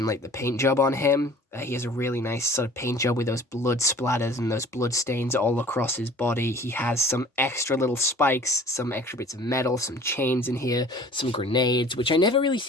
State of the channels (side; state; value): both; normal; correlation 0.47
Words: like the paint job on him. He has a really nice sort of paint job with those blood splatters and those blood stains all across his body. He has some extra little spikes, some extra bits of metal, some chains in here, some grenades, which I never really